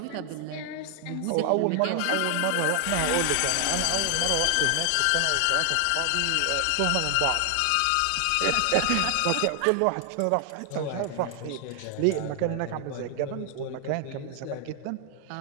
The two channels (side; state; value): both; different; correlation 0.00